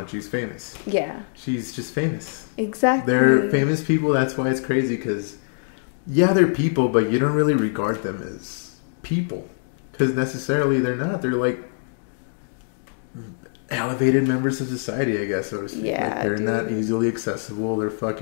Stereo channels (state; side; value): silent; right; digital silence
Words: She's famous. Yeah. She's just famous. Exactly. They're famous people. That's why it's crazy, because, yeah, they're people, but you don't really regard them as people. Because necessarily they're not. They're like elevated members of society, I guess, so to speak. Yeah, like, they're not easily accessible. They're